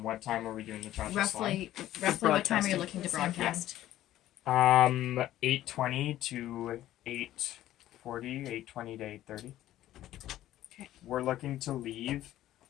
time are we doing the cha-cha Roughly what time are you Broadcasting. looking to broadcast? slide? 8:20 to 8:40, 8:20 to 8:30. Okay. We're looking to leave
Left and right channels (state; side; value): quieter; right; 13.7 dB